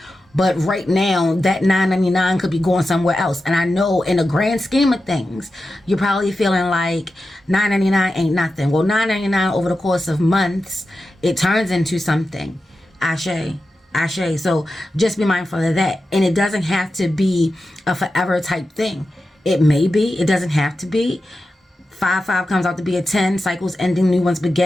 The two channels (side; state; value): both; normal; correlation 0.91